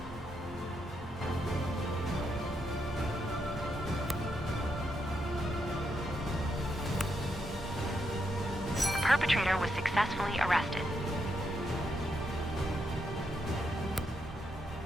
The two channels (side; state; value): both; normal; correlation 0.81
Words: The perpetrator was successfully arrested.